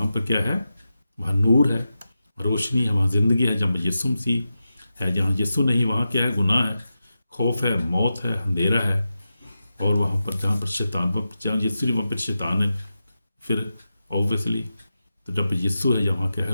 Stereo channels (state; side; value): inverted; both; correlation -0.91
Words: पर क्या है, वहाँ नूर है, रोशनी है, वहाँ ज़िंदगी है। जब यीशु मसीह है, जहाँ यीशु नहीं वहाँ क्या है, गुनाह है, खौफ है, मौत है, अंधेरा है। और वहाँ पर जहाँ पर शैतान, जहाँ यीशु वहाँ पर शैतान है फिर ऑब्वियसली। तो जब यीशु है यहाँ क्या है,